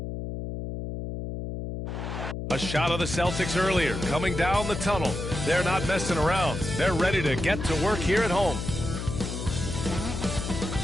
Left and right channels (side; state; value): left; noise; hum, 5 dB below the sound